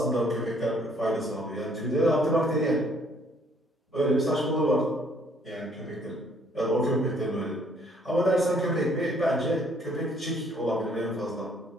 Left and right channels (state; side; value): normal; both; correlation 0.63